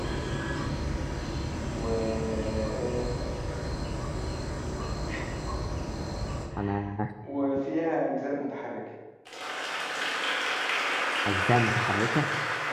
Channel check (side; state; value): both; identical; correlation 1.00